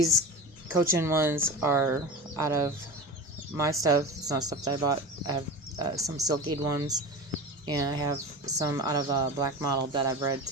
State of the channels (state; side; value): normal; both; correlation 0.30